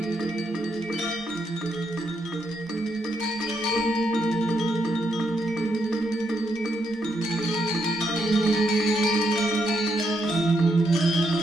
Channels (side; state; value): both; normal; correlation 0.78